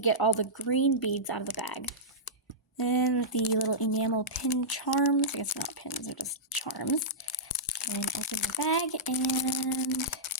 get all the green beads out of the bag. Then the little enamel pin charms. I guess they're not pins, they're just charms. And open the bag and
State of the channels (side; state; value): both; normal; correlation -0.14